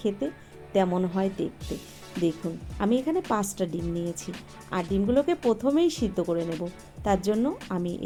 তেমন হয় দেখতে। দেখুন, আমি এখানে 5টা ডিম নিয়েছি, আর ডিমগুলোকে প্রথমেই সিদ্ধ করে নেব। তার জন্য আমি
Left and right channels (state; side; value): identical; both; correlation 1.00